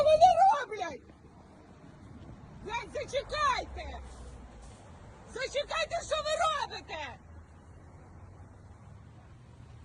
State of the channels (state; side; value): identical; both; correlation 1.00